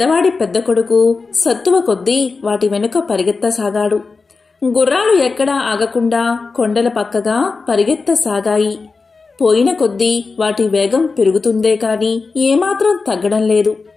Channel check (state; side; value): quieter; right; 4.3 dB